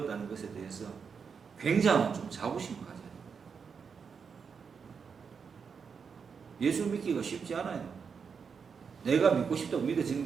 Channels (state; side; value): quieter; left; 6.1 dB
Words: 것에 대해서 굉장한 좀 자부심을 가져요. 예수 믿기가 쉽지 않아요. 내가 믿고 싶다고 믿어지는